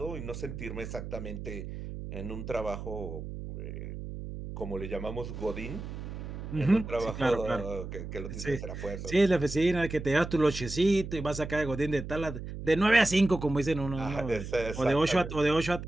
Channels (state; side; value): noise; right; hum, 8 dB below the sound